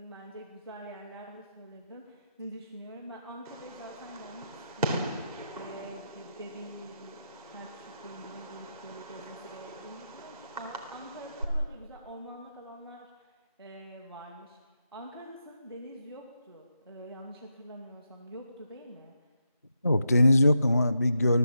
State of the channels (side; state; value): both; inverted; correlation -0.85